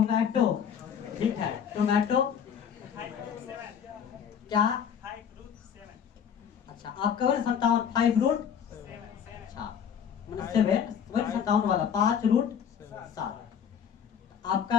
ठीक है टोमेटो क्या। अच्छा आपका वही 57 5 रूट। अच्छा मतलब 7 वही 57 वाला 5 रूट 7।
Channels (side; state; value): right; quieter; 7.9 dB